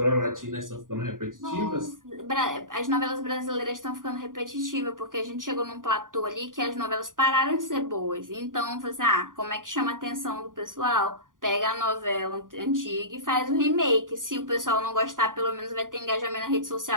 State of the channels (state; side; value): late; left; 0.89 ms